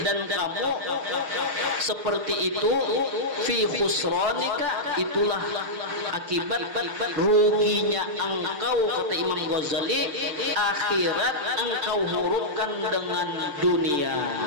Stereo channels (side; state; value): left; late; 6.7 ms